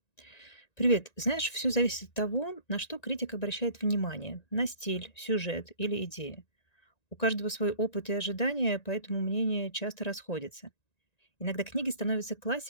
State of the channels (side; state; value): right; late; 1.9 ms